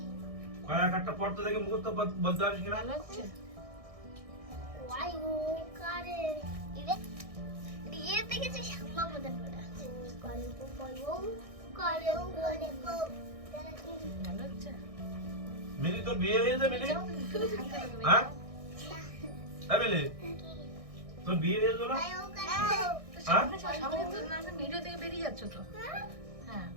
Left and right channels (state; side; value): late; left; 1.6 ms